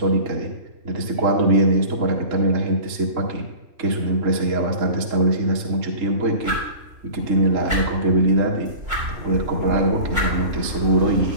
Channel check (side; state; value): left; late; 3.6 ms